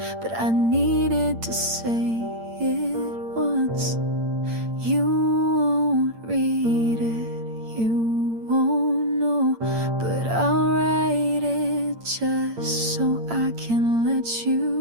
but I needed to say it once. You won't read it, you won't know, but I'll write it just so I can let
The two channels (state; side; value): late; left; 8.8 ms